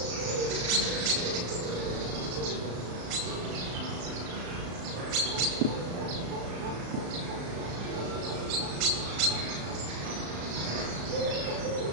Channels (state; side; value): late; left; 35 ms